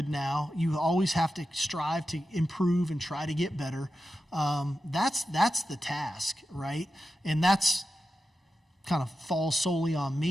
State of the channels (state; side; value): normal; both; correlation 0.91